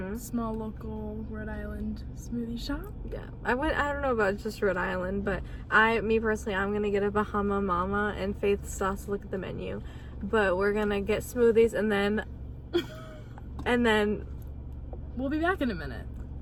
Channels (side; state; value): both; identical; correlation 1.00